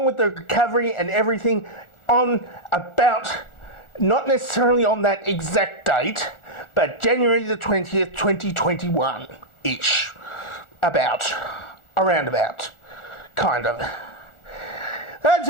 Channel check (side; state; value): right; late; 1.4 ms